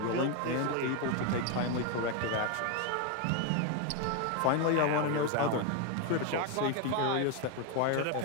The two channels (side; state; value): both; different; correlation 0.01